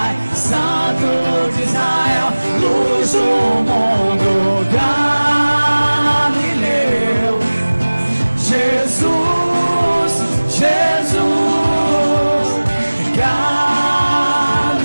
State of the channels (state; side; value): inverted; both; correlation -1.00